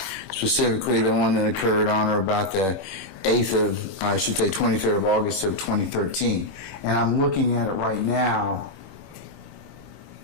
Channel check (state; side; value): late; right; 21 ms